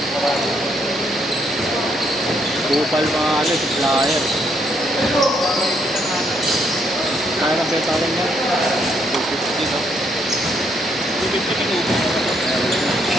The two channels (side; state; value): both; normal; correlation 0.73